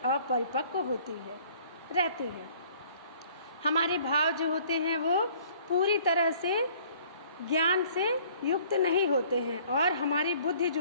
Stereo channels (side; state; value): both; inverted; correlation -0.56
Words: अपरिपक्व रहती है। हमारे भाव जो होते हैं वो पूरी तरह से ज्ञान से युक्त नहीं होते हैं और हमारी बुद्धि